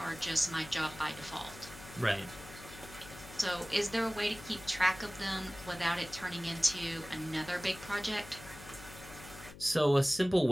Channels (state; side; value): noise; left; hum, 16 dB below the sound